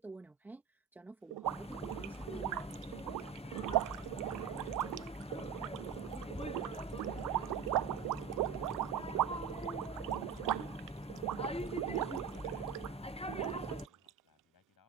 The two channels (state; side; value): quieter; left; 7.2 dB